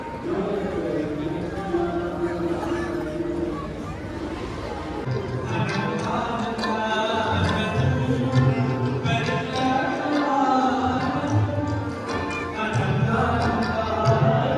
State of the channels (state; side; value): identical; both; correlation 1.00